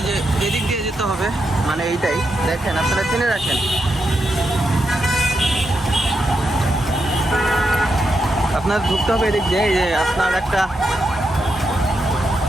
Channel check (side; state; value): both; normal; correlation 0.84